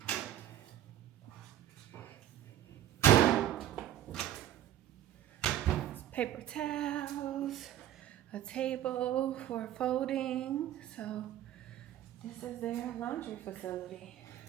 Paper towels, a table for folding. So this is their laundry facility.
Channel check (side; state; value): left; quieter; 12.0 dB